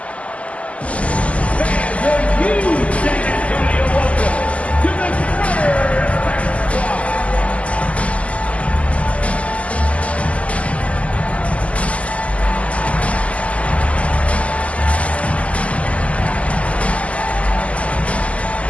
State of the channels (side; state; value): right; late; 0.065 ms